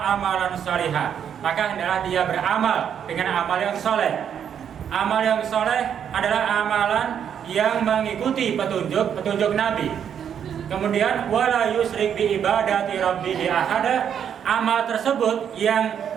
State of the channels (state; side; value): quieter; left; 8.5 dB